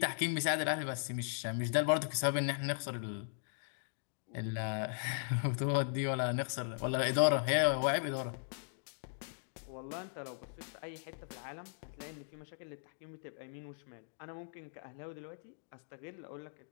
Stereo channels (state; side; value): silent; right; digital silence